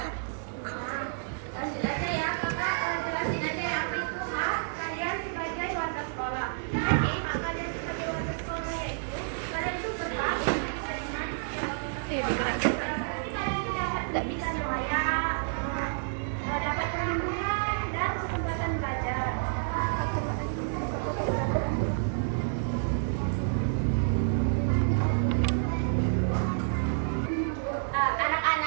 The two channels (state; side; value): silent; left; digital silence